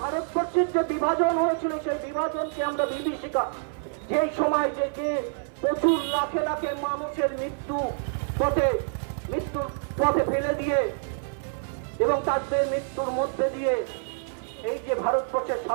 ভারতবর্ষের যে বিভাজন হয়েছিল, সেই বিভাজনকে আমরা বিভীষিকা, সেই সময় যে প্রচুর লাখে লাখে মানুষের মৃত্যুর পথে ফেলে দিয়ে এবং তাদের মৃত্যুর মধ্যে দিয়ে এই যে ভারতবর্ষের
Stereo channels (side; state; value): left; silent; 59 dB below the other